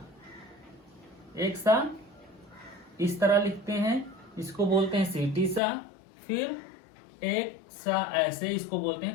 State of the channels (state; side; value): drops out; right; at 5.6 s